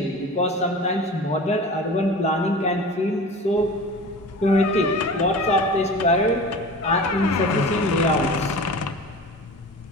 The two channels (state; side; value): normal; both; correlation 0.36